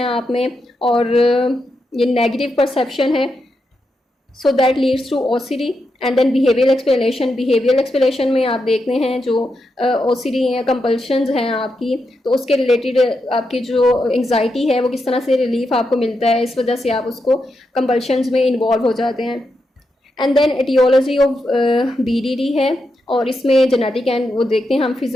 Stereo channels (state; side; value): normal; both; correlation 0.85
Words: आप में, और ये नेगेटिव परसेप्शन है, so that leads to OCD. And then behavioural explanation, behavioural explanation में आप देखते हैं जो ओसीडी या कंपल्शंस हैं आपकी, तो उसके रिलेटेड आपकी जो एंग्जाइटी है वो किस तरह से रिलीफ आपको मिलता है, इस वजह से आप उसको कंपल्शंस में इन्वॉल्व हो जाते हैं। And then aetiology of BDD है, और इसमें जेनेटिक एंड वो देखते हैं हम